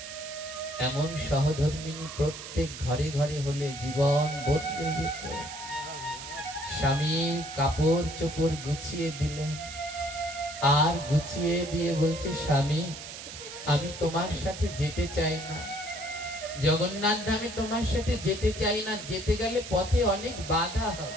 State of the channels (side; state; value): right; noise; hiss, 11 dB below the sound